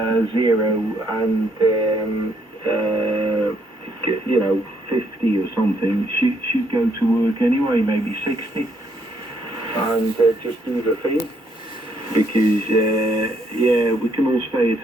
and you know, 50 or something should go to work anyway, maybe 60, and just do the thing. Because yeah, we can all stay at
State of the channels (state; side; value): normal; both; correlation 0.71